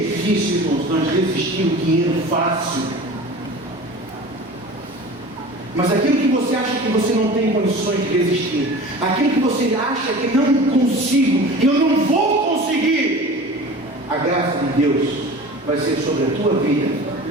irmãos, nós resistir o dinheiro fácil. Mas aquilo que você acha que você não tem condições de resistir, aquilo que você acha que não consigo, eu não vou conseguir, a graça de Deus vai ser sobre a tua vida.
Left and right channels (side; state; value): both; normal; correlation 0.38